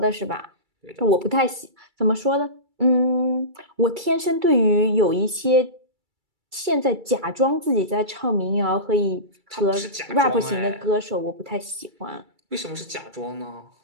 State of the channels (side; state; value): left; late; 2.3 ms